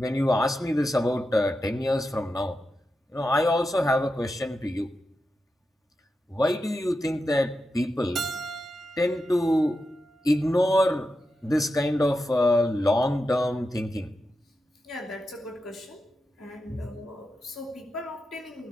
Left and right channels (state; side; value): normal; both; correlation 0.89